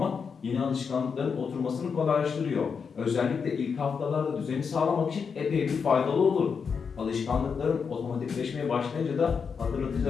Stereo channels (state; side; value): quieter; right; 6.0 dB